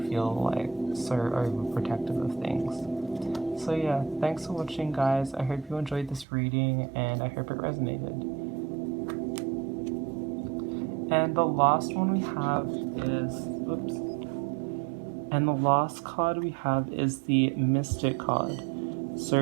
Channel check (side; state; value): left; drops out; at 6.2 s